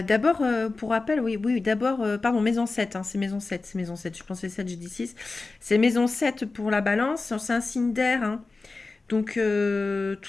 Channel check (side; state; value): right; quieter; 3.7 dB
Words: pour rappel, oui, oui, d'abord, pardon, maison 7, hein, c'est maison 7, je pensais 7, j'ai dit 6. C'est maison 7 pour la balance, c'est un signe d'air, hein. Donc,